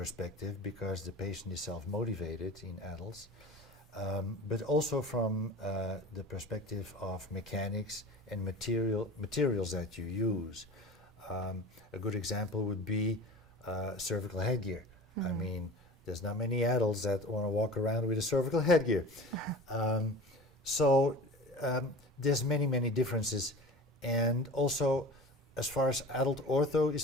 because the patient is self-motivated in adults, but also from the perspective of mechanics and materials that you use. A good example would be cervical headgear. I mean, there's not many adults that want to walk around with a cervical headgear. So there's many differences. And also, as far as adult ortho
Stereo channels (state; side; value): normal; both; correlation 0.37